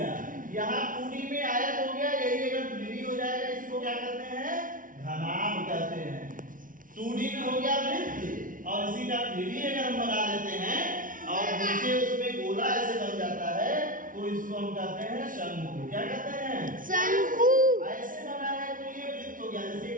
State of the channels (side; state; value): left; late; 0.39 ms